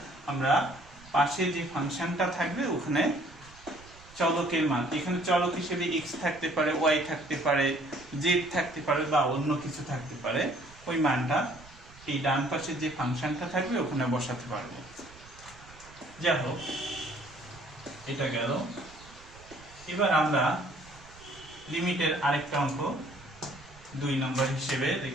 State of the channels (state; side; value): noise; right; rumble, 22 dB below the sound